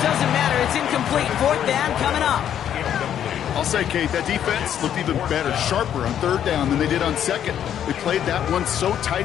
doesn't matter. It's incomplete. Fourth down coming up. I'll say, Kate, that defense looked even better, sharper on third down than they did on second. They played that one so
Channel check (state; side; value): quieter; right; 9.8 dB